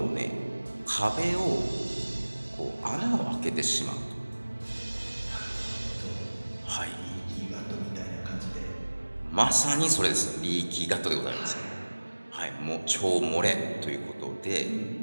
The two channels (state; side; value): inverted; both; correlation -1.00